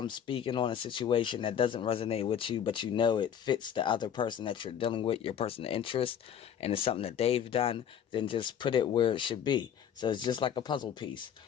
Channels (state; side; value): quieter; right; 8.9 dB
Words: speaking on a situation that doesn't resonate with you, but you know it fits the other person that you're dealing with, your person of interest, and it's something that they've done, then just put it where it should be. So it's just like a puzzle piece.